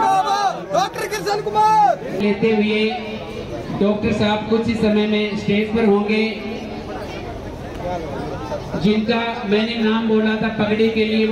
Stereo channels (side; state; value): both; identical; correlation 1.00